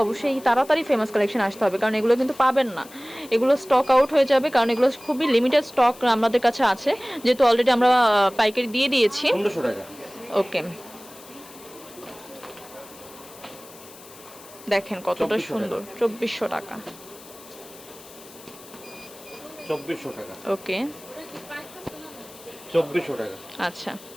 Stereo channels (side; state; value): left; noise; hiss, 20 dB below the sound